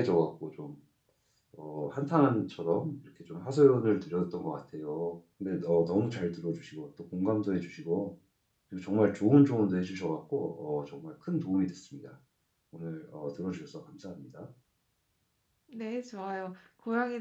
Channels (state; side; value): identical; both; correlation 1.00